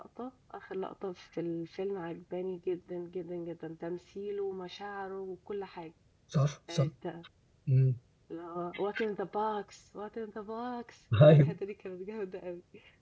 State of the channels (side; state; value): both; identical; correlation 1.00